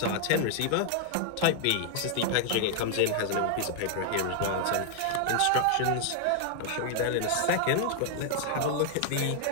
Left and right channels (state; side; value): different; both; correlation 0.00